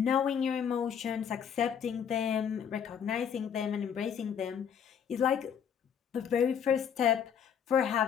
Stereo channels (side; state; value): right; quieter; 7.9 dB